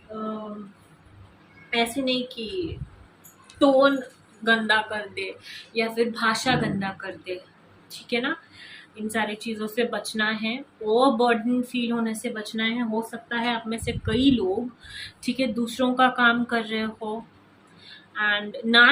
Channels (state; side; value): identical; both; correlation 1.00